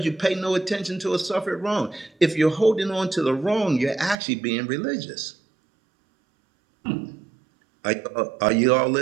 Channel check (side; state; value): left; drops out; at 4.2 s